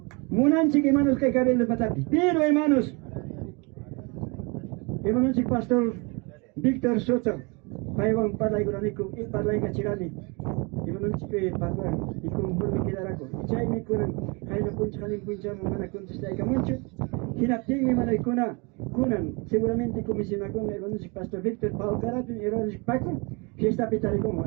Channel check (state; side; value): quieter; left; 29.8 dB